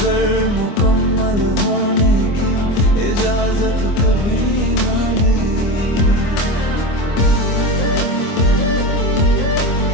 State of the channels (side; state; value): right; late; 24 ms